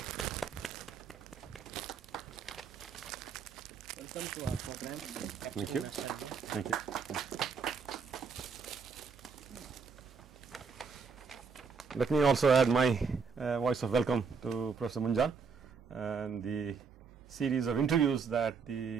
Welcome to our program. Thank you. Nostalgia. Thank you. Let me also add my voice of welcome to Professor Munjal and the series of interviews that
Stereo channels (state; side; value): quieter; left; 5.6 dB